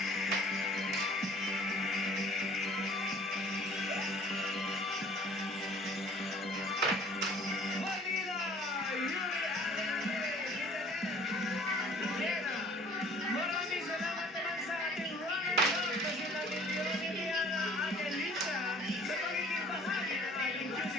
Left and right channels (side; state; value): both; normal; correlation 0.52